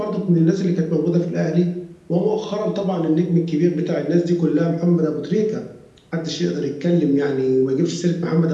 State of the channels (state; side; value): identical; both; correlation 1.00